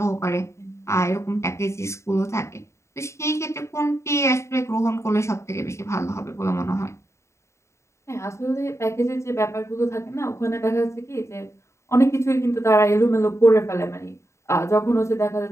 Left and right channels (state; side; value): late; right; 0.14 ms